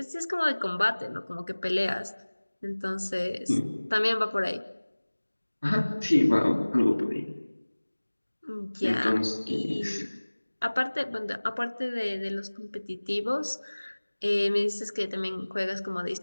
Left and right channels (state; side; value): inverted; both; correlation -1.00